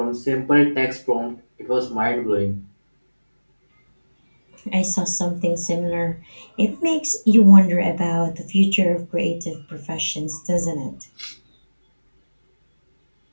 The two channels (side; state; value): both; inverted; correlation -1.00